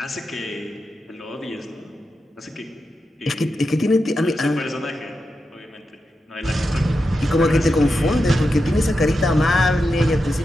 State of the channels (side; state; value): both; normal; correlation 0.88